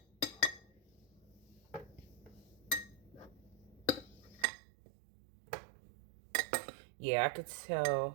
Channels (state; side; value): drops out; left; at 4.5 s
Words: Yeah, I could